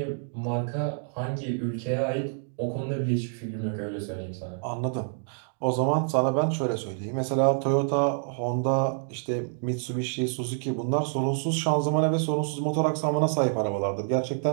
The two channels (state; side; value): silent; left; digital silence